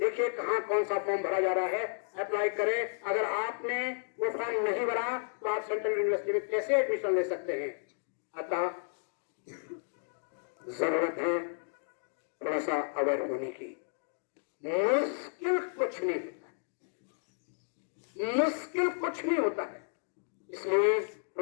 कहां कौन सा फॉर्म भरा जा रहा है, अप्लाई करें। अगर आपने वो फॉर्म नहीं भरा तो आप सेंट्रल यूनिवर्सिटी में कैसे एडमिशन ले सकते हैं। अतः जरूरत है थोड़ा सा अवेयर होने की। मुश्किल कुछ नहीं होता है, मुश्किल कुछ नहीं होता है, इसलिए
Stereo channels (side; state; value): right; silent; digital silence